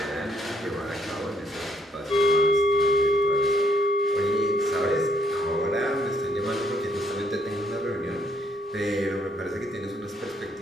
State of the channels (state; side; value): normal; both; correlation 0.69